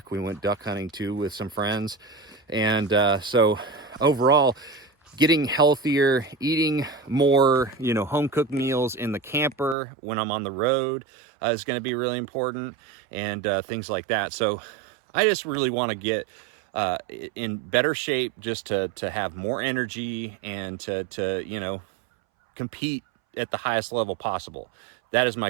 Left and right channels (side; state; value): left; drops out; at 9.8 s